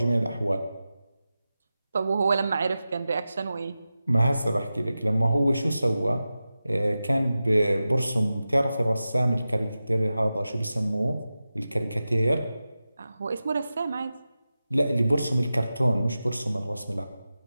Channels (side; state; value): both; inverted; correlation -0.93